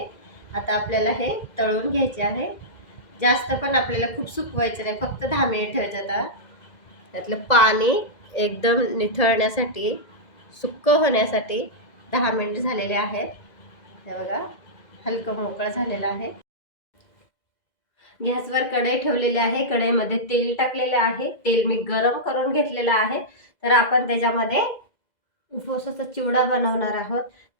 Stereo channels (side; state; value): right; late; 2.0 ms